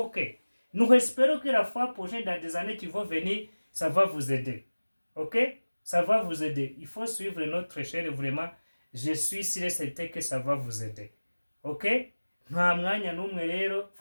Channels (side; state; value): both; inverted; correlation -1.00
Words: espérons que la fois prochaine, dans des années qui vont venir, ça va vous aider. Ok? Ça va vous aider. Il faut suivre notre chaîne vraiment. Je suis sûr et certain que ça va vous aider. Ok? Nta mwanya n'umwe rero,